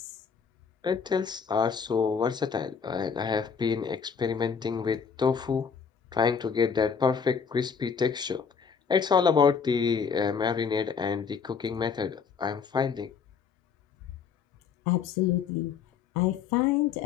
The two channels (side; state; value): right; quieter; 6.3 dB